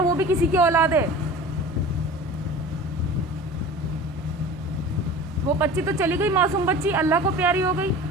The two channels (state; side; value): normal; both; correlation 0.38